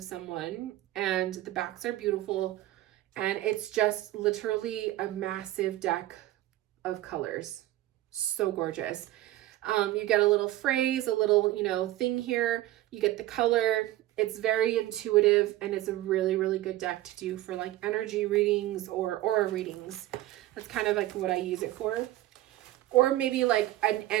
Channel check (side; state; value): left; quieter; 15.4 dB